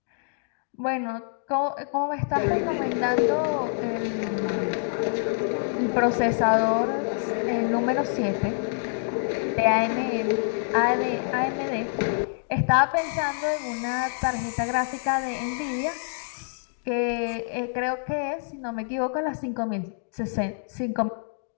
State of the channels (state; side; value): silent; right; digital silence